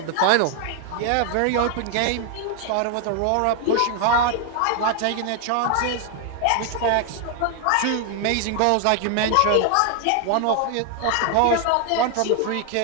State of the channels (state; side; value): different; both; correlation 0.00